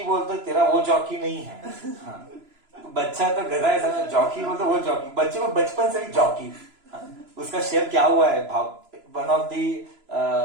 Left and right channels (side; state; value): left; late; 3.0 ms